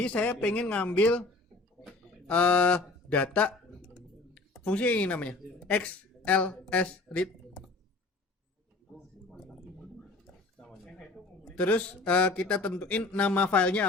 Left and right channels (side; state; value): right; quieter; 3.3 dB